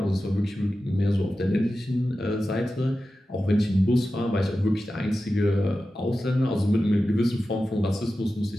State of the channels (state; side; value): normal; both; correlation 0.93